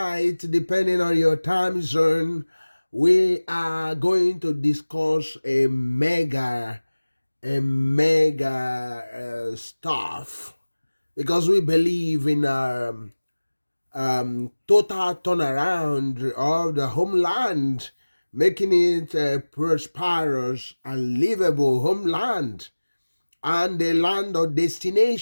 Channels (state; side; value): inverted; both; correlation -1.00